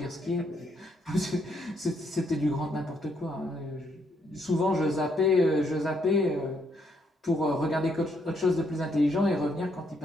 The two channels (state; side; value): normal; both; correlation 0.74